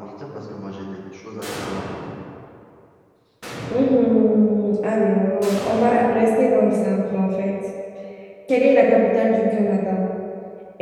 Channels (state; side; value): identical; both; correlation 1.00